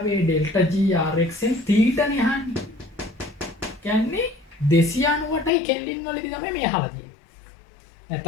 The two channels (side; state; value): right; drops out; at 5.5 s